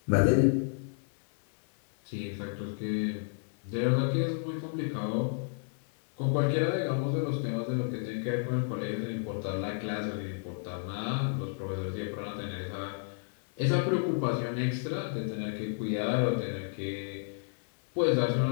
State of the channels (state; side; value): silent; right; 57 dB below the other